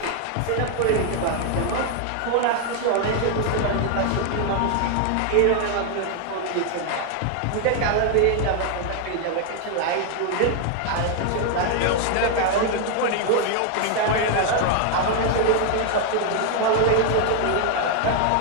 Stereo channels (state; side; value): different; both; correlation 0.00